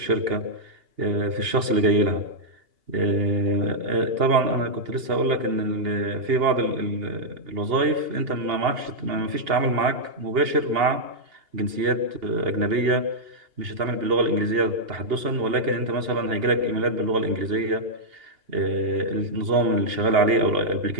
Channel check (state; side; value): late; left; 2.8 ms